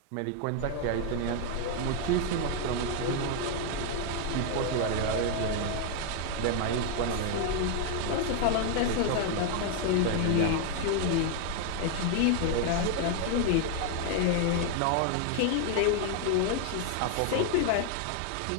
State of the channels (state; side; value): different; both; correlation 0.00